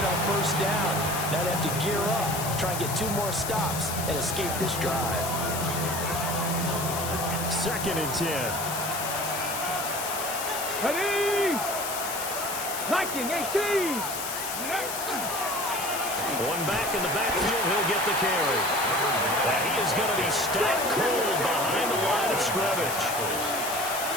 on first down. Now they have to gear up, try and get 2 more stops, and escape this drive. Second and 10. Ready! 19, 18! One back in the backfield, he'll get the carry. And he is going to be stopped cold behind the line of scrimmage.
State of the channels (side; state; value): left; noise; hiss, 5 dB below the sound